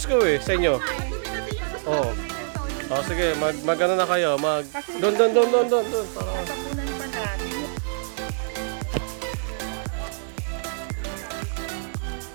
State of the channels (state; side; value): silent; left; digital silence